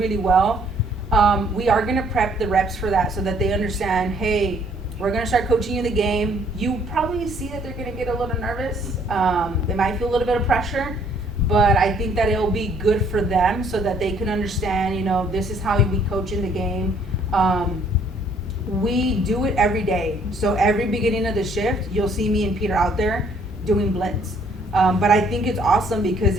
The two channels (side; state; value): both; normal; correlation 0.63